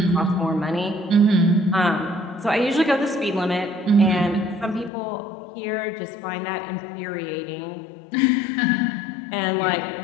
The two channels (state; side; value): drops out; right; at 4.9 s